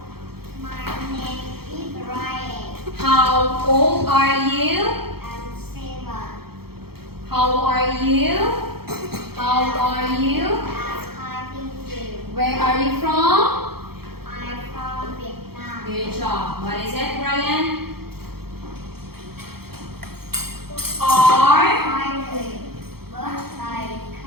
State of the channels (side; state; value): left; late; 0.95 ms